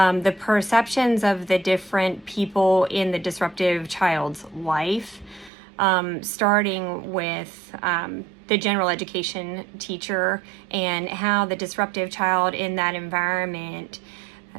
perceptions of the different people in the disruptive child's life, starting with the general education teacher and how the disruptive child in that environment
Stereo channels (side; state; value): left; drops out; at 5.5 s